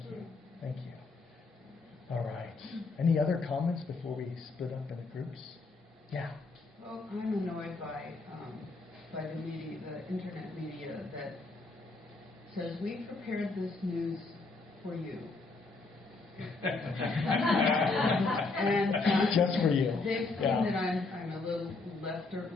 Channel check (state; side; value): quieter; right; 3.8 dB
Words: Thank you. All right. Any other comments before we split up into groups? Yeah. Well, I'm annoyed by the media, the internet media, that says we prepared this news for you. And just for you. They've seen that I'm a little